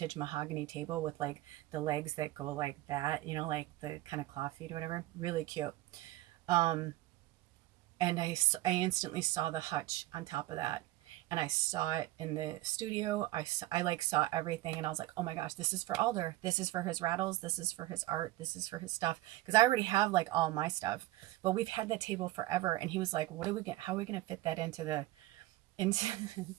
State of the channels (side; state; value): left; quieter; 17.2 dB